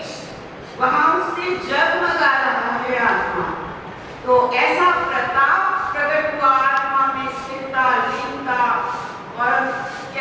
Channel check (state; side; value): identical; both; correlation 1.00